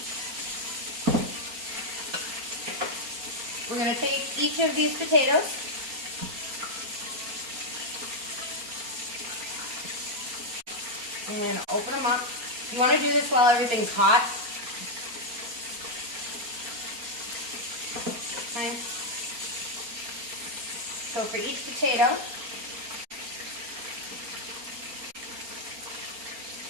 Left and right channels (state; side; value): late; left; 4.3 ms